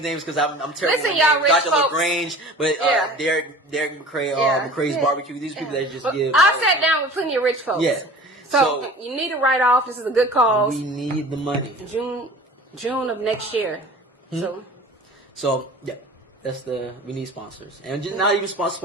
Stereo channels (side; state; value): both; normal; correlation 0.41